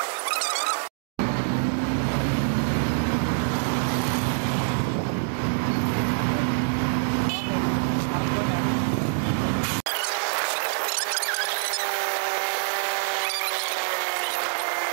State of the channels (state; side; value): silent; left; digital silence